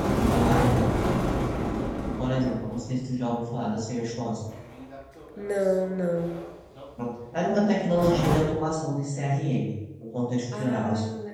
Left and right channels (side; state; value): both; identical; correlation 1.00